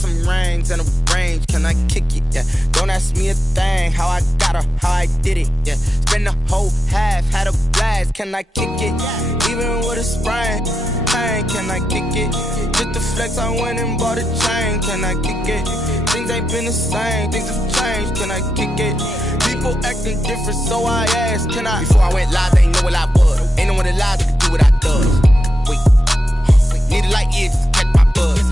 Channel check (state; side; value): normal; both; correlation 0.87